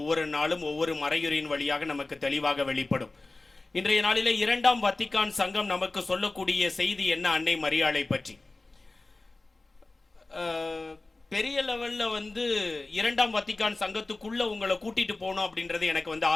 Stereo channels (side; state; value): right; quieter; 3.2 dB